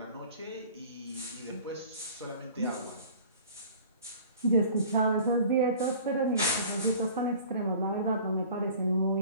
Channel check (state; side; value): inverted; both; correlation -0.46